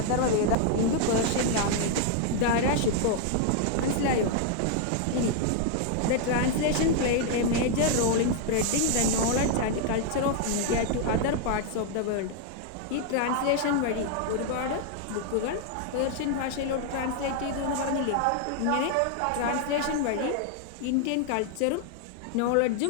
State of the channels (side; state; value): both; different; correlation 0.00